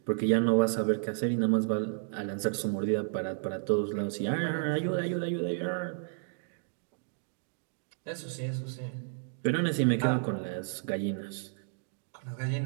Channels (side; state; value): left; silent; digital silence